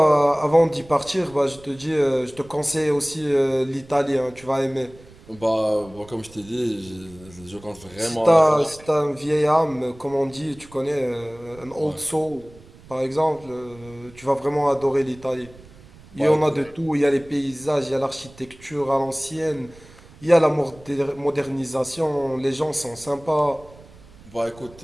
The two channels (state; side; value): noise; right; rumble, 22 dB below the sound